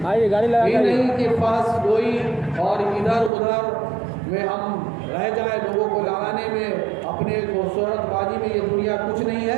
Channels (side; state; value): left; drops out; at 3.3 s